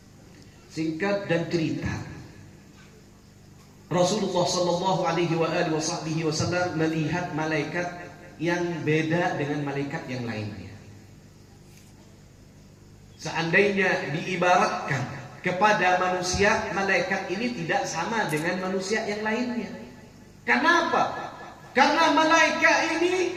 Singkat dan cerita, Rasulullah sallallahu alaihi wasallam melihat malaikat yang beda dengan malaikat yang lainnya. Seandainya diibaratkan kepada manusia, malaikat ini tidak sama dengan manusia yang lainnya. Kenapa? Karena malaikat ini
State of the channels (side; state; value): both; identical; correlation 1.00